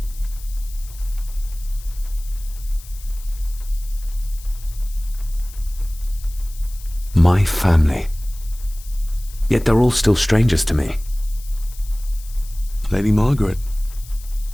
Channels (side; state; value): left; noise; hiss, 19 dB below the sound